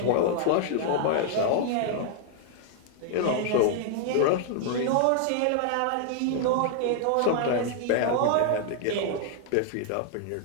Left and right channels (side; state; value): both; different; correlation 0.00